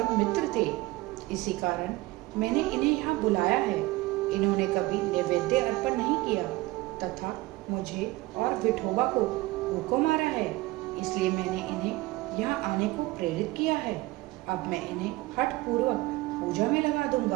मित्र थे, इसी कारण मैंने इन्हें यहाँ बुलाया है। इन्होंने कभी नैवेद्य अर्पण नहीं किया तथा मुझे और विठोबा को भूखों मारा है, इसलिए मैंने इन्हें यहाँ आने को प्रेरित किया है। अब मैं इन्हें हठ पूर्वक पूजा में लगा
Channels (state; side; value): quieter; left; 20.1 dB